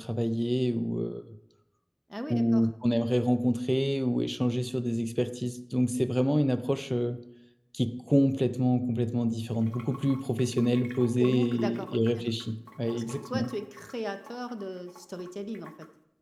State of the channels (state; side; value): identical; both; correlation 1.00